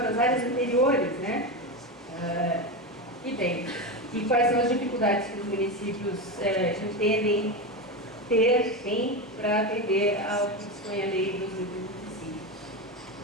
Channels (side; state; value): both; normal; correlation 0.16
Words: das áreas anteriores, né? E quais são as dificuldades que os municípios entendem tem para atender ao que dispõe a lei 2025.